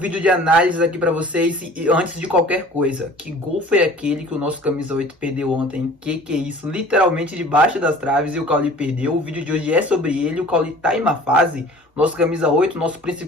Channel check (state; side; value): normal; both; correlation 0.46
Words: de análise aqui pra vocês. E antes de qualquer coisa, que gol foi aquele que o nosso camisa 8 perdeu ontem? Que é isso? Literalmente debaixo das traves e o Cauli perdeu. O vídeo de hoje é sobre ele. O Cauli tá em uma fase, nosso camisa 8, nosso